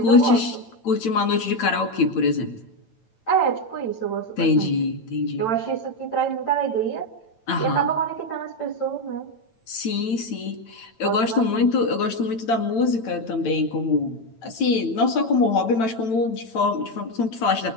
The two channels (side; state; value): right; late; 8.9 ms